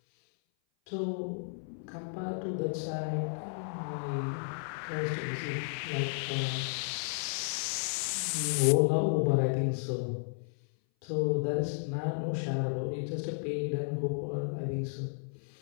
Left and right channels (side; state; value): right; silent; 56 dB below the other